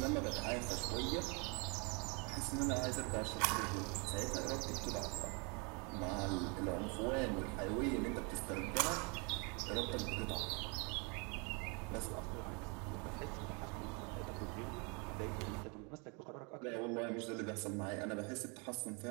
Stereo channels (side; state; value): left; quieter; 32.9 dB